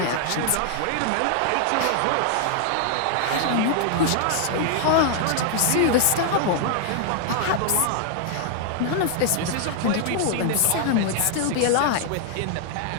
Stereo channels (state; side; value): different; both; correlation 0.00